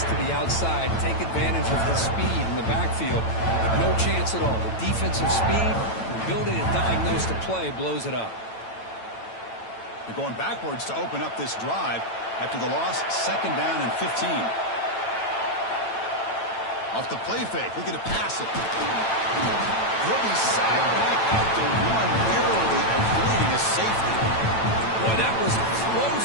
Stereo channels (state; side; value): late; right; 9.0 ms